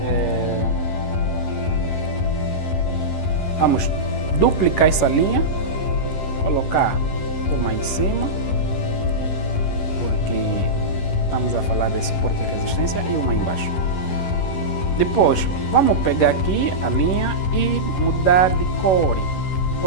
vamos duplicar essa linha, colocar uma em cima, porque estamos a falar de suporte e resistência, e uma embaixo. Depois, vamos pegar aqui a linha e mudar de cor.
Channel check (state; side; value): late; right; 11 ms